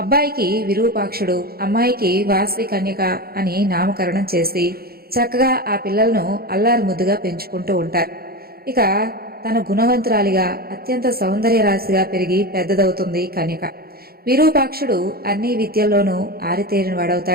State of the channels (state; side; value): late; left; 0.44 ms